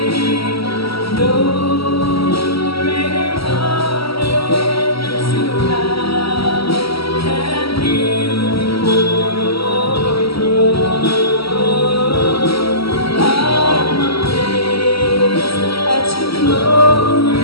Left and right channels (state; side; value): late; right; 0.75 ms